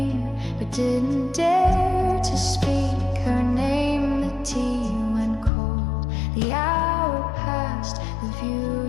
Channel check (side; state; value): right; drops out; at 5.5 s